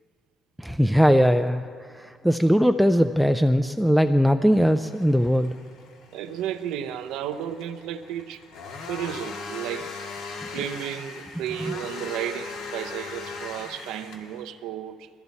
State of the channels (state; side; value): normal; both; correlation 0.92